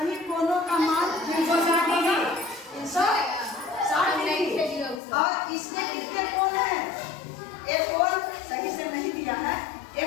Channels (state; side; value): drops out; right; at 5.0 s